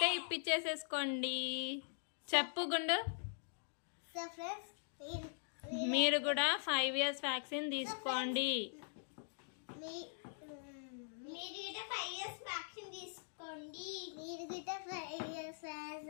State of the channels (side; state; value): right; silent; digital silence